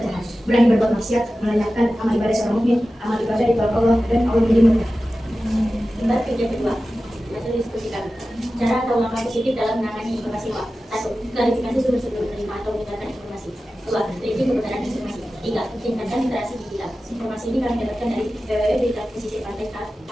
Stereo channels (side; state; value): both; normal; correlation 0.94